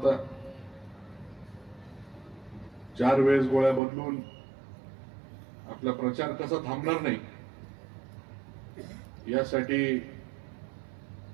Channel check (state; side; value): drops out; left; at 3.8 s